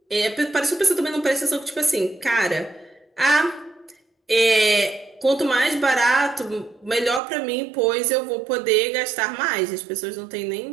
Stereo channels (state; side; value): drops out; left; at 7.2 s